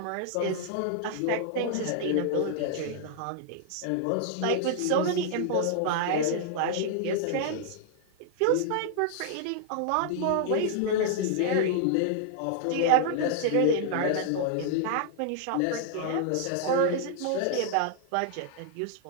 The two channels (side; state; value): both; different; correlation -0.01